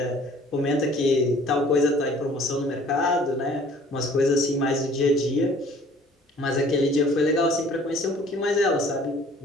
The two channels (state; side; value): normal; both; correlation 0.53